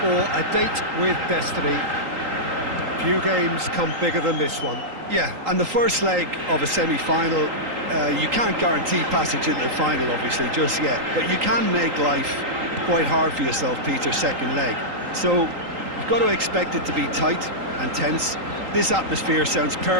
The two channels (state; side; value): late; left; 3.8 ms